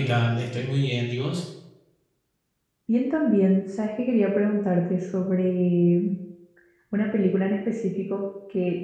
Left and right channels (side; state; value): both; identical; correlation 1.00